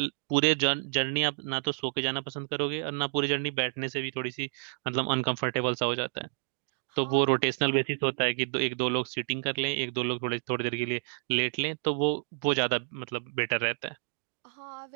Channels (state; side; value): silent; left; digital silence